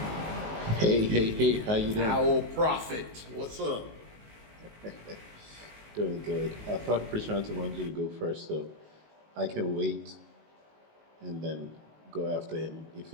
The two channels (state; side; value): late; left; 19 ms